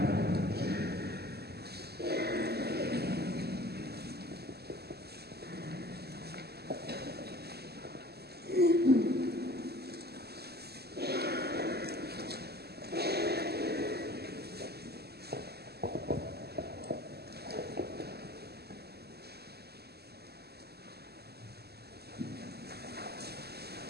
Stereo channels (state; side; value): late; left; 0.46 ms